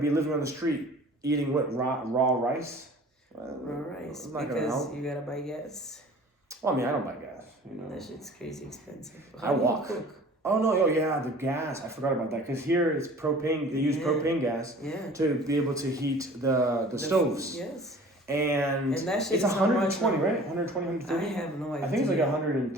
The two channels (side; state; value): both; normal; correlation 0.46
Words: living on the street eating what raw rice. Raw rice because you gotta buy gas. Well, I mean, I don't buy gas. That shit's crazy expensive. I walk. Cook? Oh no! The gas. I forgot about that because here it's propane. They use propane gas to be able to heat the stoves. Yes. And that shit it's is 120, right? 120, 130? I have no idea. I think it's like